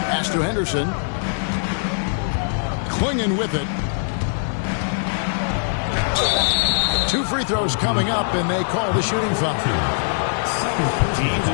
Pass to Henderson. Clingan with it. 2 free throws coming up, and they call the shooting foul. Teams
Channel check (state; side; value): silent; right; 62 dB below the other